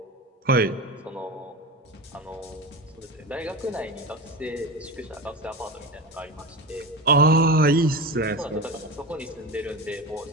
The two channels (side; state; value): both; normal; correlation 0.24